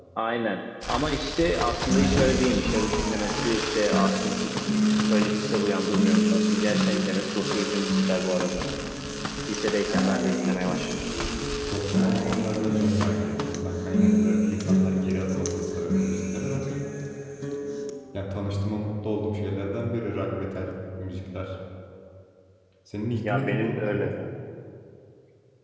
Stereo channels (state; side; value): identical; both; correlation 1.00